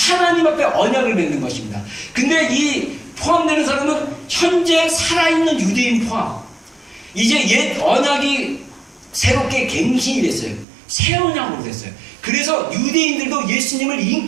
앞에 언약을 맺는 것입니다. 근데 이 포함되는 사람은 현재 살아있는 유대인 포함. 이제 옛 언약이 새롭게 갱신이 됐어요. 새 언약으로 됐어요. 그래서 유대인들도 예수님을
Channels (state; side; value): drops out; left; at 10.7 s